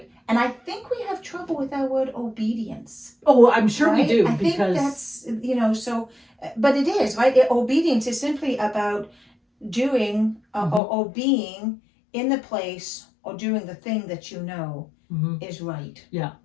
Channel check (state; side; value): drops out; right; at 10.8 s